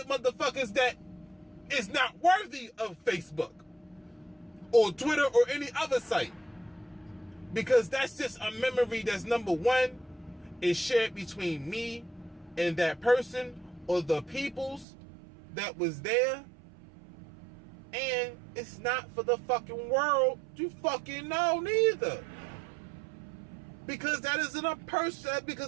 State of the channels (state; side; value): drops out; left; at 14.9 s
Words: motherfuckers that is not worthy of Facebook or Twitter or any other site. Because that's just a memory that's, number one, is shared between me and that person or the peoples that was there. And it's not for the fucking world to fucking know neither. Because that's